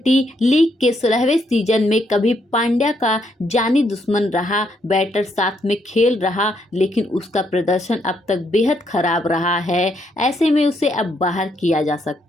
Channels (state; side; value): normal; both; correlation 0.75